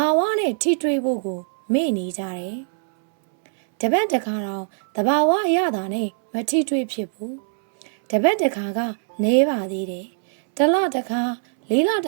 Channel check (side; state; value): left; silent; 64 dB below the other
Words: ာဝနဲ့ထိတွေ့ဖို့ကိုမေ့နေကြတယ်တပတ်တစ်ခါတော့တဘာဝအရသာနဲ့မထိတွေ့ဖြစ်ဘူးတပတ်တစ်ခါကနေပါသေးတယ်တလတစ်ခါလေးလ